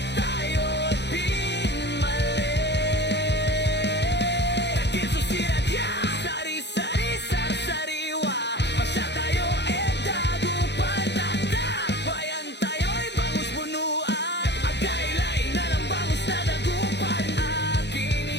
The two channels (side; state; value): right; late; 0.50 ms